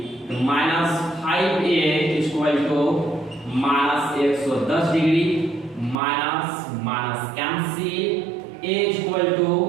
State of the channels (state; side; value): drops out; left; at 6.0 s